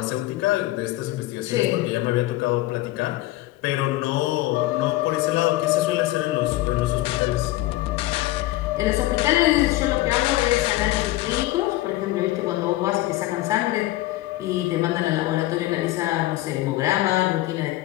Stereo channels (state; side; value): quieter; right; 17.2 dB